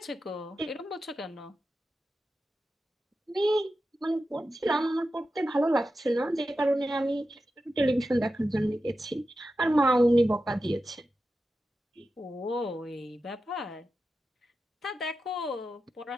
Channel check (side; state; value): both; normal; correlation 0.91